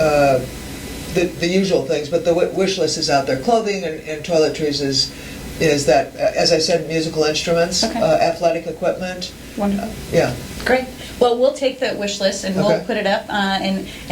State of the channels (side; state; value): both; identical; correlation 1.00